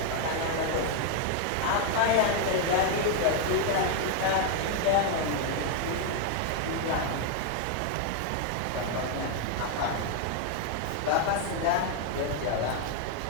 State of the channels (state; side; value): different; both; correlation 0.00